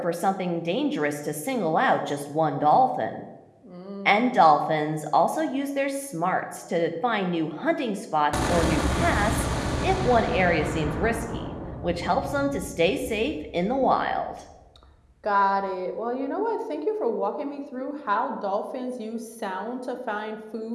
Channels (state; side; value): identical; both; correlation 1.00